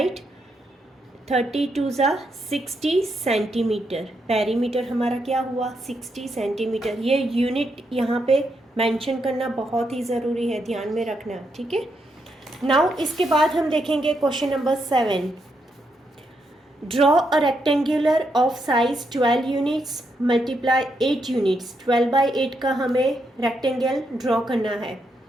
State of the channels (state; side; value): normal; both; correlation 0.80